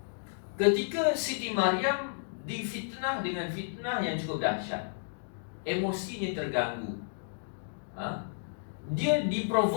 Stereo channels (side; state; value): right; silent; digital silence